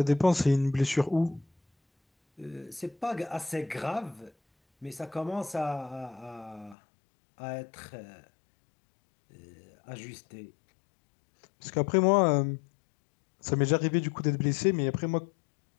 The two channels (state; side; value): drops out; right; at 6.8 s